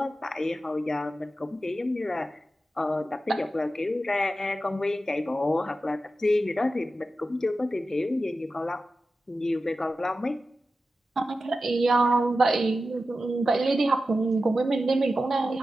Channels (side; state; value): both; normal; correlation 0.92